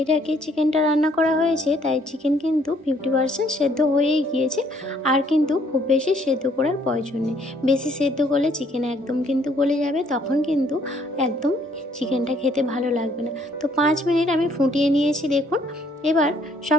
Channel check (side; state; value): both; normal; correlation 0.64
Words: ঢাকিয়ে চিকেনটা রান্না করা হয়েছে তাই চিকেন কিন্তু 50% সেদ্ধ হয়েই গিয়েছে, আর কিন্তু খুব বেশি সেদ্ধ করার প্রয়োজন নেই। বেশি সেদ্ধ করলে চিকেন একদম কিন্তু গলে যাবে, তখন কিন্তু একদম চিকেনটা খেতে ভালো লাগবে না। তো 5 মিনিট আমি ফুটিয়ে নিয়েছি। দেখুন এবার